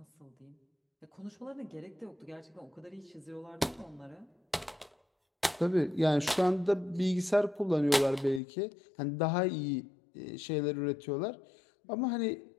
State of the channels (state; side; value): drops out; right; at 8.4 s